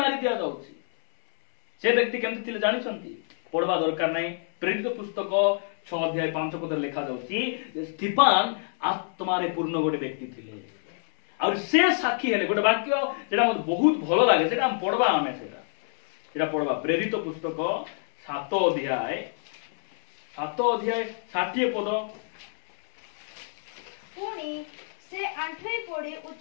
दिया जाउची से व्यक्ति केमति थिले जानि छंती पढवा दरकार नै प्रेरित पुस्तक 6 अध्याय 5 पद लिखा जाउची स्टीफान आत्मारे पूर्ण गोटे व्यक्ति थिले और से साक्षी हेले गोटे वाक्य जेडा मते बहुत भलो लागे सेटा हम पढवा आमे सेटा पढवा प्रेरित पुस्तक 7 अध्याय 60 पद पुणी से आंठई पड़ी उच्च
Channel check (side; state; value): right; silent; digital silence